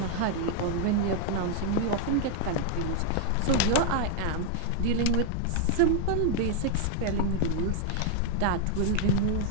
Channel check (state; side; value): different; both; correlation 0.00